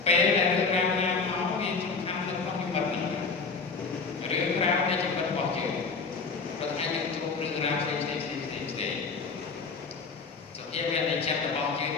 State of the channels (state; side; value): quieter; right; 4.7 dB